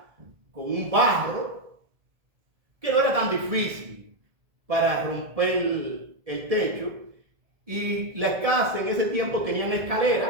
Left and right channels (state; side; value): late; left; 1.7 ms